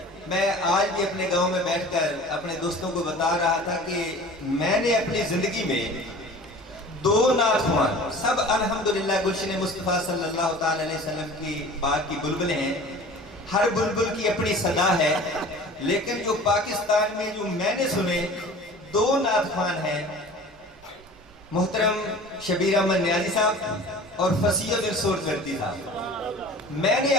میں آج بھی اپنے گاؤں میں بیٹھ کر اپنے دوستوں کو بتا رہا تھا کہ میں نے اپنی زندگی میں 2 نعت خوان، سب الحمدللہ گلشن مصطفیٰ صلی اللہ تعالی علیہ وسلم کی باغ کی بلبلیں ہیں، ہر بلبل کی اپنی صدا ہے، لیکن جو پاکستان میں جو میں نے سنے 2 نعت خوان ہیں، محترم شبیر احمد نیازی صاحب اور فصیح الدین سورکردی صاحب۔ میں نے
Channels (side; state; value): both; normal; correlation 0.42